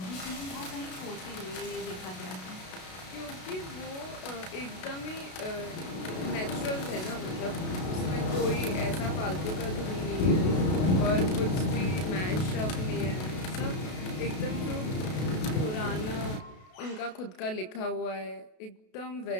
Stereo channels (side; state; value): right; late; 32 ms